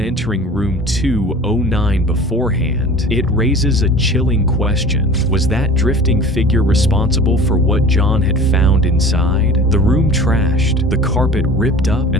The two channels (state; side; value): normal; both; correlation 0.41